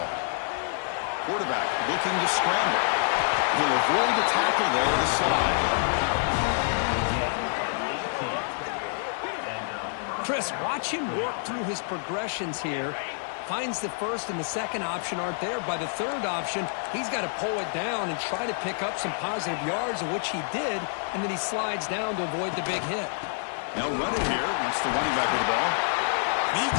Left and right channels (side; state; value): right; silent; 60 dB below the other